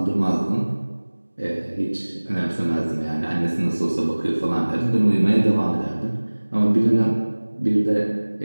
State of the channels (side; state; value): both; inverted; correlation -1.00